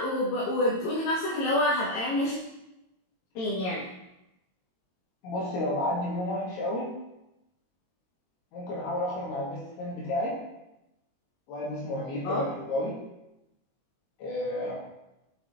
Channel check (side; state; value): right; late; 22 ms